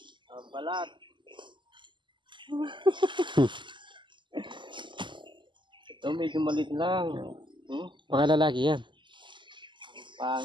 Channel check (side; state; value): left; late; 0.23 ms